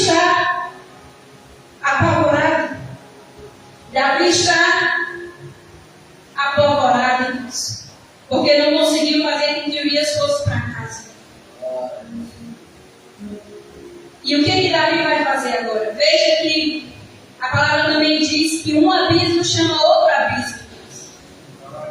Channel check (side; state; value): both; identical; correlation 1.00